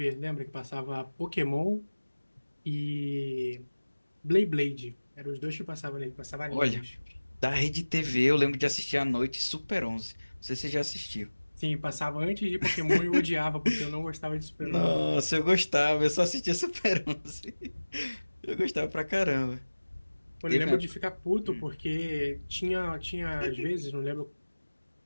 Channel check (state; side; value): inverted; both; correlation -1.00